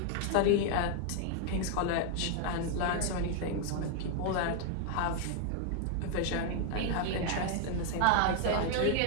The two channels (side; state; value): both; different; correlation 0.00